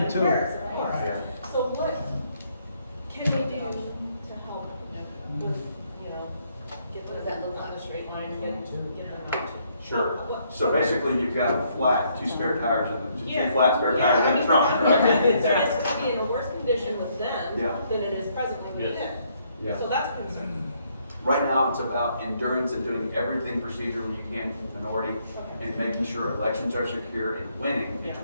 too. Yeah. So what can they do to help with, get them on a straight line and get them out to? Sure. So basically, you've got a flat, two spare tires, and Yeah. two flat spare tires Yeah, in the trunk, right? It's going to be in a worse condition with them Yeah. than it is presently with them. Yeah. So that's a concern. Right now, it's about endurance and doing everything procedurally you can for the minority and making sure elections are secure and winning in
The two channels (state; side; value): inverted; both; correlation -0.70